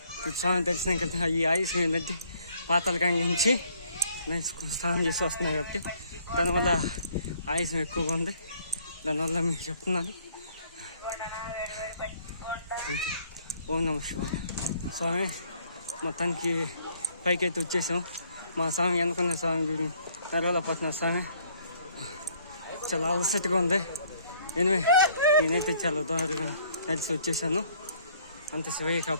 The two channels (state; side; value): inverted; both; correlation -0.62